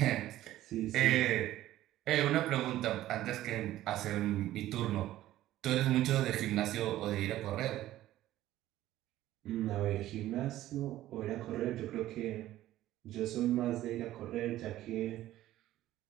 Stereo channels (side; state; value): left; quieter; 14.4 dB